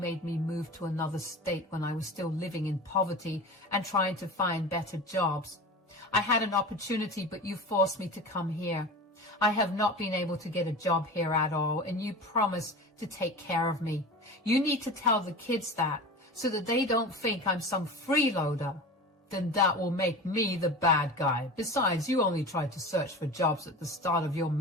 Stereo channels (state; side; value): normal; both; correlation 0.32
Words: me move to another state when I was still living in poverty and trying to find better jobs. I had an opportunity, but you forced me to come here. I have not been able to get a job here at all, and you promised to take care of me. You need to tell the kids that, so that they don't think I'm some freeloader. Then that will make me the bad guy. Besides, you only tried to search for jobs at the start of your